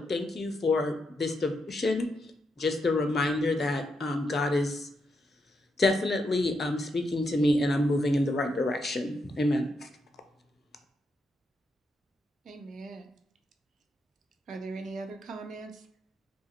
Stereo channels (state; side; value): normal; both; correlation 0.82